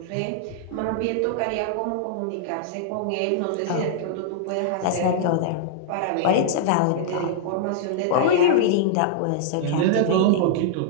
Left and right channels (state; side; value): different; both; correlation -0.01